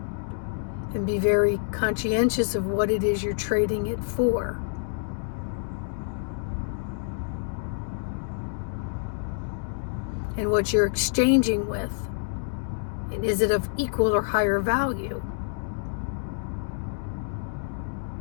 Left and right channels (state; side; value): silent; right; digital silence